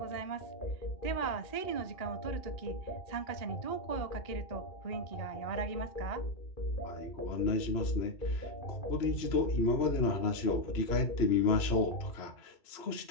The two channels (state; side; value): late; right; 3.0 ms